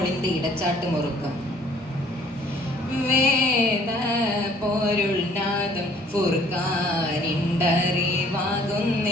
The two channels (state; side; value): normal; both; correlation 0.58